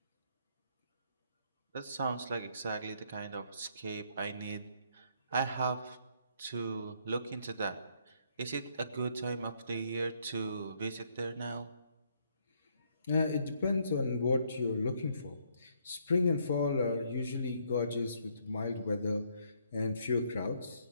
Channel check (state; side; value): inverted; both; correlation -0.70